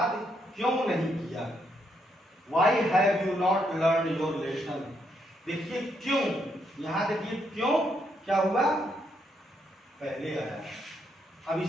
क्यों नहीं किया? Why have you not learn your lesson? देखिए क्यों, यहां देखिए क्यों क्या हुआ, पहले आया। अब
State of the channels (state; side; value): normal; both; correlation 0.76